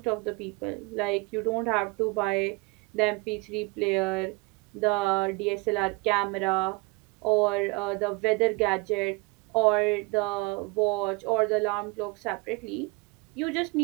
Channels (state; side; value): quieter; left; 25.6 dB